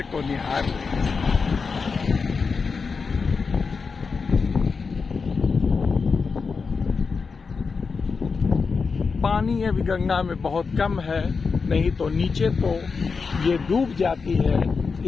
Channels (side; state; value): right; quieter; 5.0 dB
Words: को निहार रहे हैं। पानी अभी गंगा में बहुत कम है, नहीं तो नीचे तो ये डूब जाती है